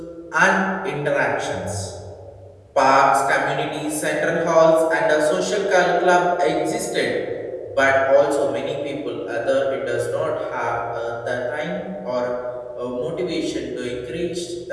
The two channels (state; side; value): identical; both; correlation 1.00